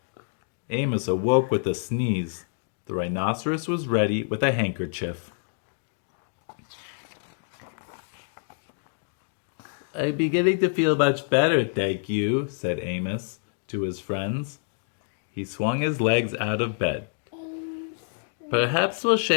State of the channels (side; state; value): right; silent; digital silence